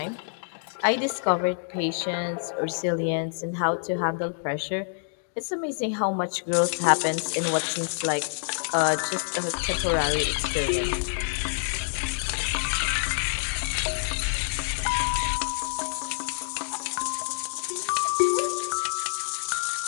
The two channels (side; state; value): right; silent; digital silence